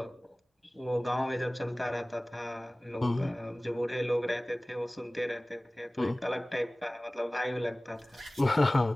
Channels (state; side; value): normal; both; correlation 0.98